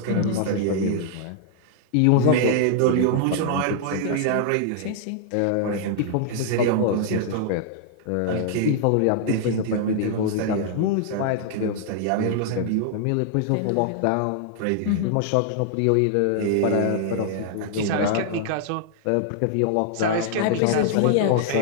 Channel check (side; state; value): both; different; correlation -0.01